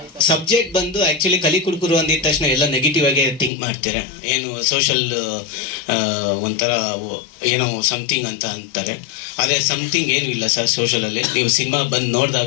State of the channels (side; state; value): right; drops out; at 3.5 s